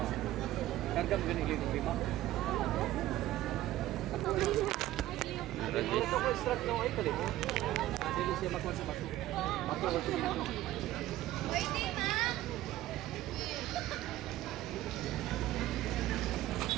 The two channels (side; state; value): left; quieter; 15.0 dB